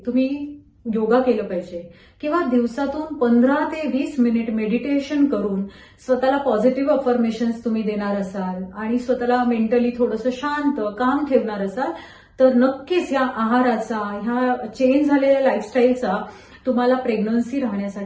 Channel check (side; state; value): both; identical; correlation 1.00